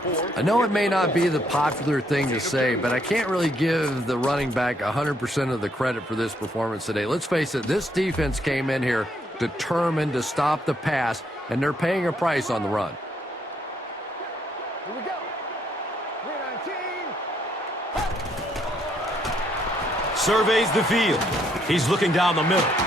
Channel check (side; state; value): both; normal; correlation 0.72